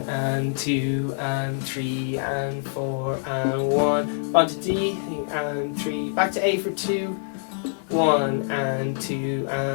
and 2 and 3 and 4 and 1. On to D and 3. Back to A for 2. 1 and 2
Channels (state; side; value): silent; right; digital silence